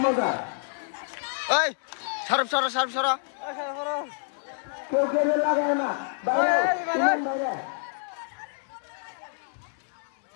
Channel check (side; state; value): right; silent; 60 dB below the other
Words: এই সরব সর সরব সর